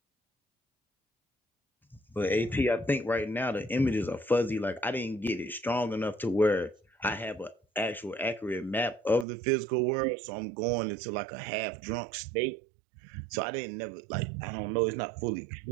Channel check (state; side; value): drops out; left; at 9.2 s